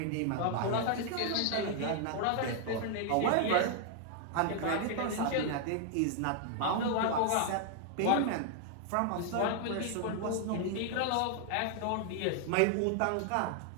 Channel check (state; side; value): different; both; correlation 0.00